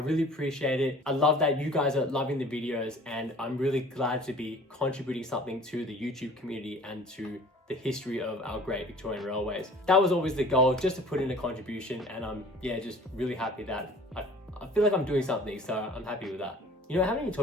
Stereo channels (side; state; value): both; normal; correlation 0.47